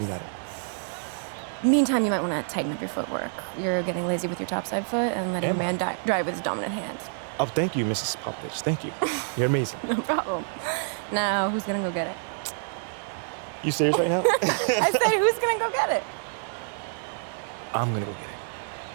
got it. Meantime, you might want to tighten up your footwork. You're getting lazy with your topside foot and letting Am your man drive with his dominant hand. Oh, thank you, Mrs. Popovich. Thank you. You're amazing. No problem. Now, who's gonna go get it? You serious right now? I said, who's gonna go get it? I'm gonna go get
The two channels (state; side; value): silent; left; 60 dB below the other